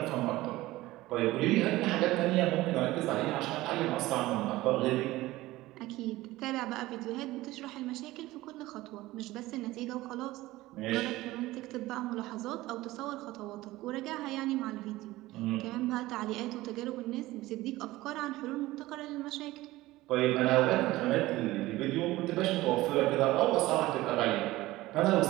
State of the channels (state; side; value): quieter; left; 18.0 dB